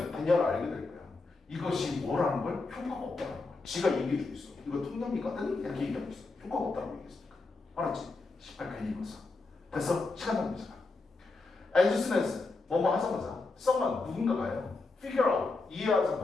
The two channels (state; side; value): quieter; right; 3.7 dB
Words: 대략을 알게 될 거야. 이것이 뭐라는 걸 효과가 없다는 거야. 지가 얘기해주고 있어. 이거 통념이거든? 이렇게 얘기하고 있어. 효과가 없다고 얘기했으니까. 알았지? 18 괜히 읽었어. 됐어? 시간 낭비잖아. As soon as 뭐뭐 하자마자 someone 누군가가요. Figure out